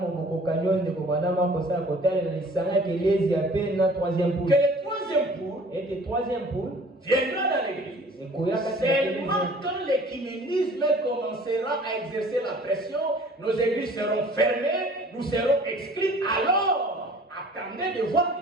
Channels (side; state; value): both; normal; correlation 0.50